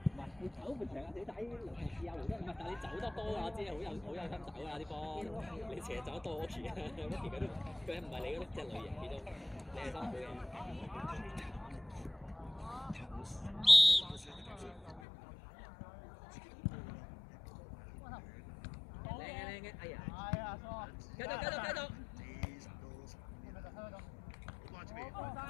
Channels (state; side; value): drops out; right; at 15.0 s